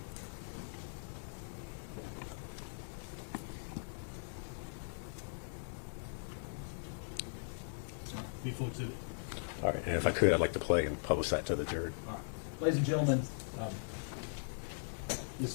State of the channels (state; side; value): silent; right; digital silence